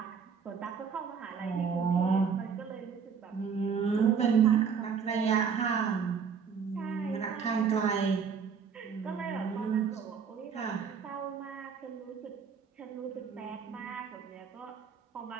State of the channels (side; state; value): left; quieter; 6.4 dB